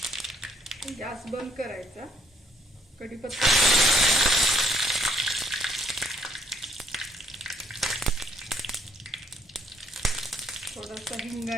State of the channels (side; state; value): both; normal; correlation 0.68